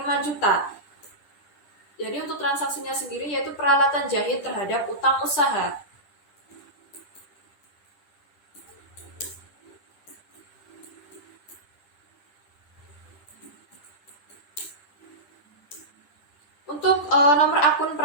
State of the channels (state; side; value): late; right; 10 ms